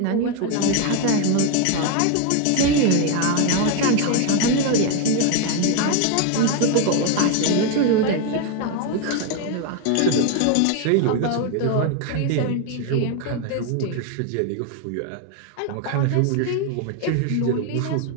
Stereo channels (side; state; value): both; different; correlation 0.01